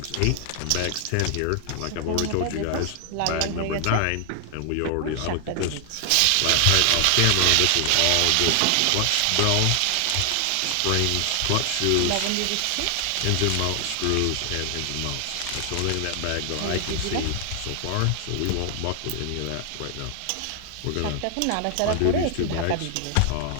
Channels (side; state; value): both; different; correlation 0.00